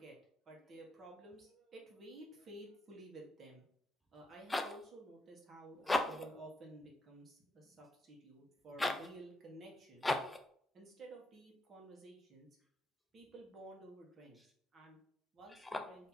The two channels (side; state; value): both; normal; correlation 0.82